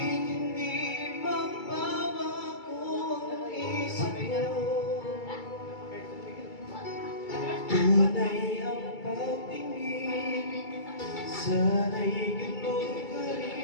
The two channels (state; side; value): late; right; 2.3 ms